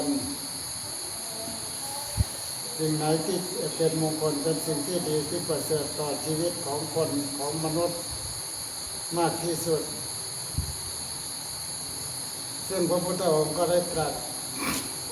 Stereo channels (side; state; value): both; identical; correlation 1.00